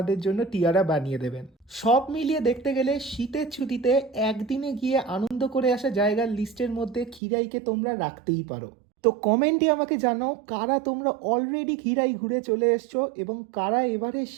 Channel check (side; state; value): left; drops out; at 7.2 s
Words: জন্য টিয়ারা বানিয়ে দেবেন। সব মিলিয়ে দেখতে গেলে শীতের ছুটিতে একদিনে গিয়ে আনন্দ করে আসা জায়গার লিস্টের মধ্যে খিরাইকে তোমরা রাখতেই পারো। তো কমেন্টে আমাকে জানাও কারা তোমরা অলরেডি খিরাই ঘুরে চলে এসছো এবং কারা এবারে